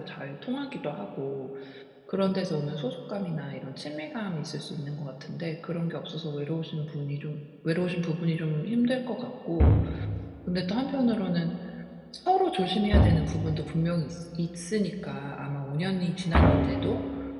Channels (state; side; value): identical; both; correlation 1.00